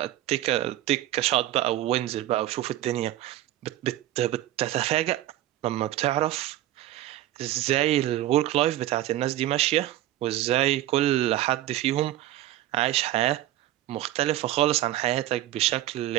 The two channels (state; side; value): quieter; left; 14.2 dB